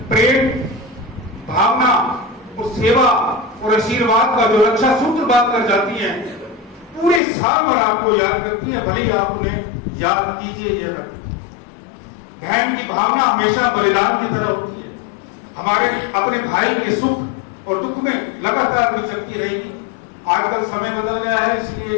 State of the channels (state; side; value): drops out; right; at 7.2 s